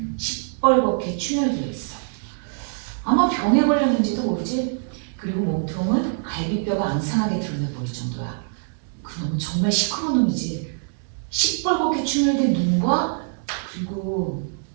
시뻘겋게 충혈되어 있어. 아마 병에 걸렸는지도 모르지. 그리고 몸통은 갈비뼈가 앙상하게 드러나 보일 정도야. 그 놈은 정말 시커먼 놈이지. 시뻘겋게 충혈된 눈과 그리고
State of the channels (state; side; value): silent; left; 62 dB below the other